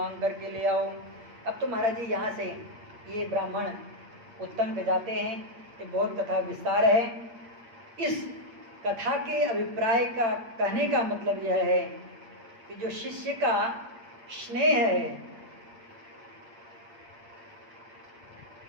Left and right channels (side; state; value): left; late; 8.6 ms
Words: करके ले आओ। अब तो महाराज जी यहाँ से ये ब्राह्मण उत्तम पे जाते हैं। ये बहुत कथा विस्तार है। इस कथा के अभिप्राय का कहने का मतलब यह है कि जो शिष्य का स्नेह है